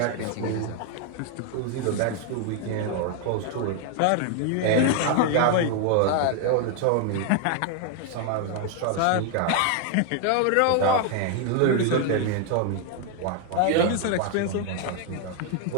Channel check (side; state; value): both; different; correlation 0.00